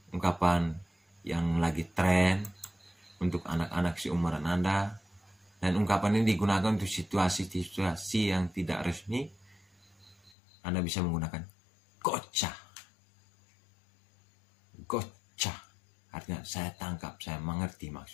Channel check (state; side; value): drops out; right; at 10.4 s